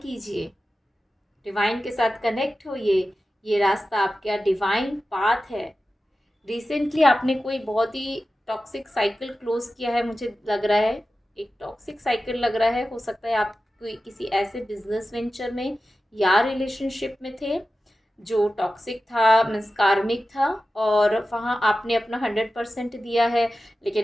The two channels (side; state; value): both; normal; correlation 0.94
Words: डिवाइन के साथ कनेक्ट होइए। ये रास्ता आपका डिवाइन पाथ है। रिसेंटली आपने कोई बहुत ही टॉक्सिक साइकिल क्लोज किया है, मुझे लग रहा है एक टॉक्सिक साइकिल लग रहा है। हो सकता है आप कोई किसी ऐसे बिजनेस वेंचर में या रिलेशनशिप में थे जो टॉक्सिक था, मीन्स कार्मिक था, और वहाँ आपने अपना 100% दिया है,